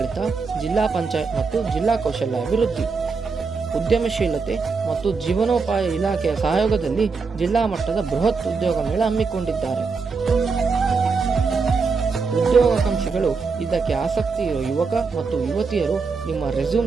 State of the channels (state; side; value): quieter; left; 4.8 dB